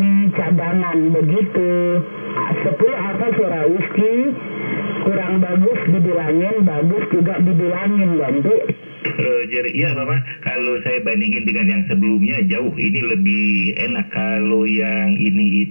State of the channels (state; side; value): inverted; both; correlation -1.00